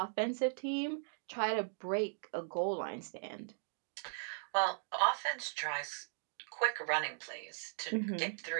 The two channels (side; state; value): left; silent; digital silence